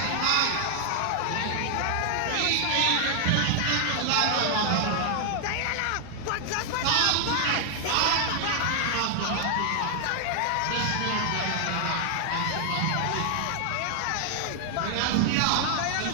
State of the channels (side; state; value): both; different; correlation 0.00